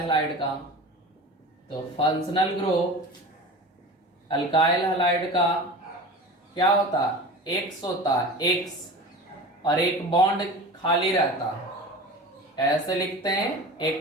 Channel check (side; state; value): both; normal; correlation 0.34